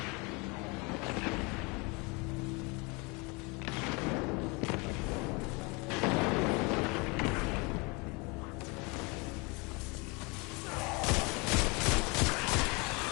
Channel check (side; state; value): right; quieter; 28.6 dB